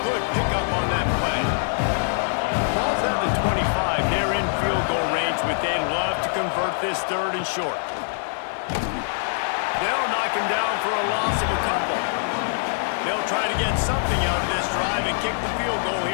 good pickup on that play. Ball's at the 25. They're in field goal range, but they'd love to convert this 3rd and short. They'll knock him down for a loss of a couple. They'll try to get something out of this drive and kick the field goal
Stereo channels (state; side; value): silent; right; 63 dB below the other